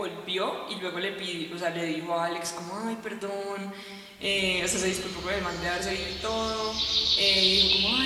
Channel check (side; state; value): both; identical; correlation 1.00